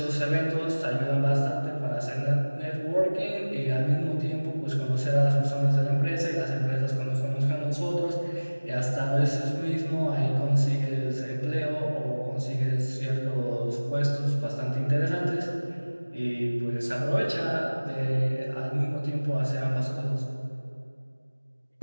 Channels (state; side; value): inverted; both; correlation -1.00